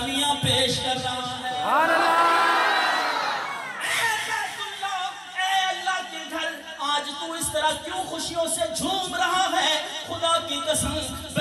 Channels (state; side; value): identical; both; correlation 1.00